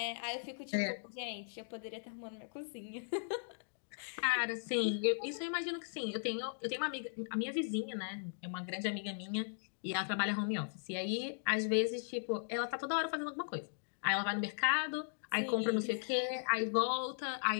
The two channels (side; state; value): right; silent; digital silence